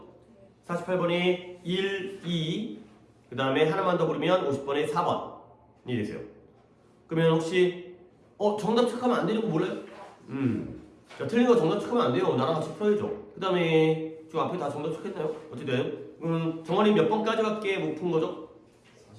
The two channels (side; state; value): both; identical; correlation 1.00